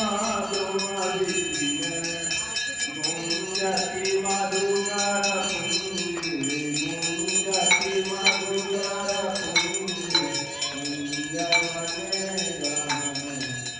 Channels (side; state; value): both; identical; correlation 1.00